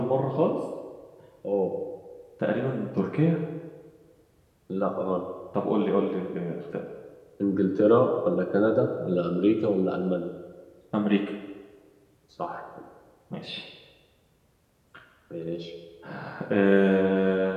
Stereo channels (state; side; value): identical; both; correlation 1.00